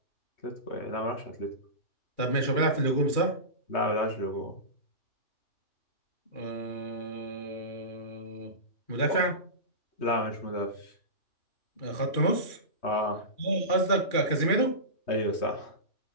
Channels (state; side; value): late; right; 2.4 ms